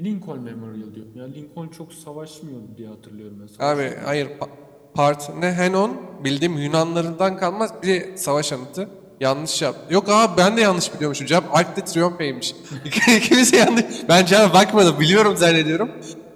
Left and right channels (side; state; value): both; identical; correlation 1.00